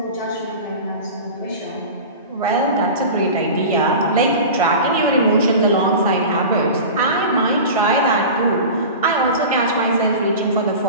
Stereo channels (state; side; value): inverted; both; correlation -0.32